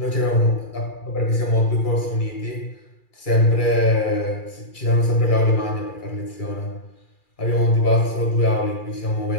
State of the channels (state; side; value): late; right; 2.4 ms